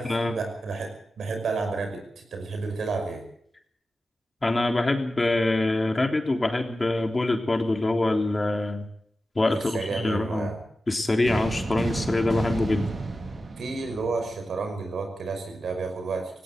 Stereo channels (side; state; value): both; normal; correlation 0.92